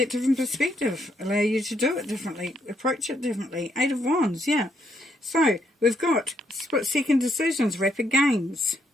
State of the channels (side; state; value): both; normal; correlation 0.75